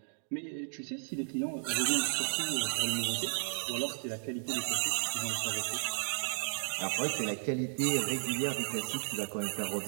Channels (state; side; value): silent; left; digital silence